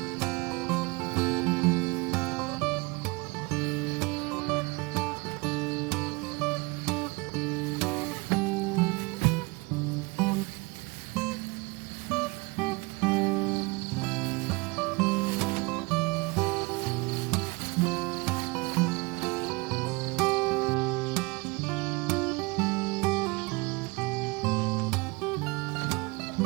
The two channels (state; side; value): quieter; left; 26.5 dB